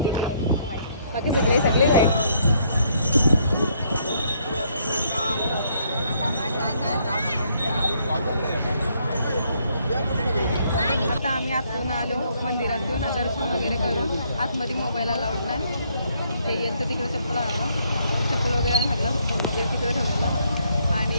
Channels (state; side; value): inverted; both; correlation -0.70